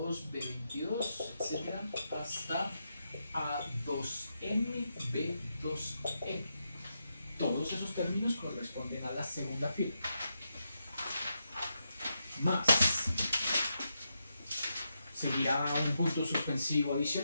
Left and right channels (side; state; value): both; inverted; correlation -0.85